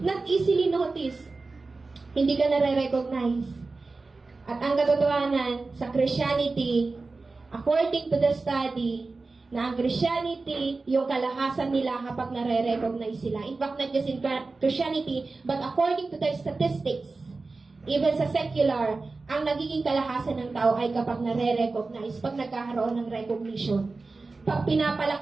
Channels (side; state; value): left; quieter; 3.7 dB